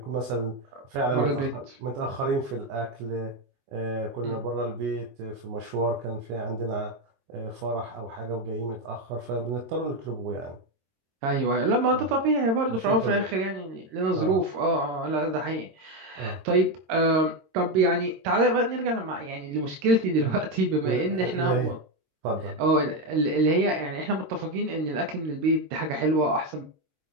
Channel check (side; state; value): left; late; 22 ms